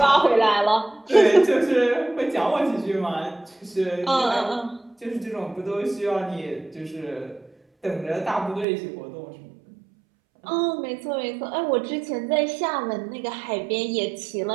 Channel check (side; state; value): left; drops out; at 8.7 s